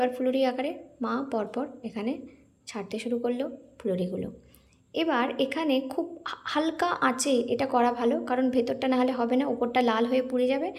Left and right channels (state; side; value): identical; both; correlation 1.00